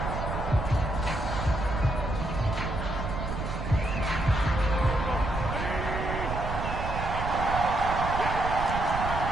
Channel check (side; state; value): right; noise; rumble, 4 dB below the sound